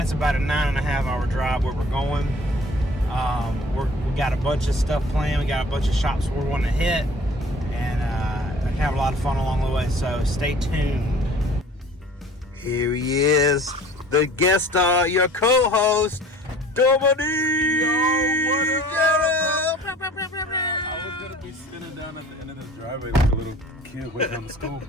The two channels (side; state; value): both; normal; correlation 0.48